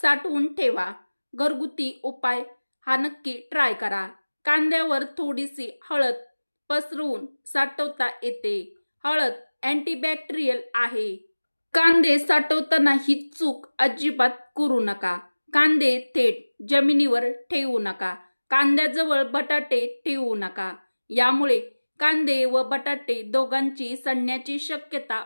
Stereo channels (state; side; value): inverted; both; correlation -1.00